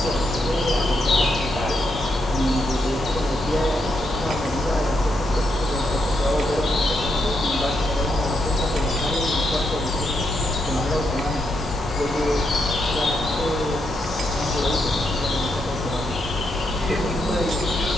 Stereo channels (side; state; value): both; normal; correlation 0.80